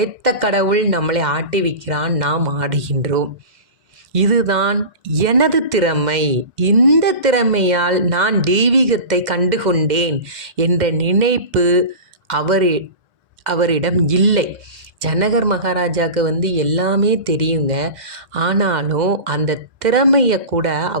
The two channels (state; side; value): late; left; 2.1 ms